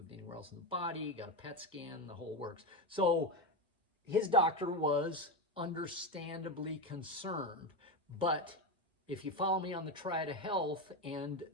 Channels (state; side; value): normal; both; correlation 0.14